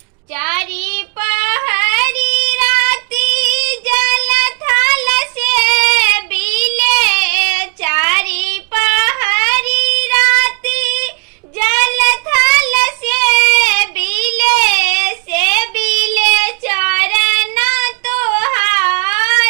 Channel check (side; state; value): left; quieter; 34.7 dB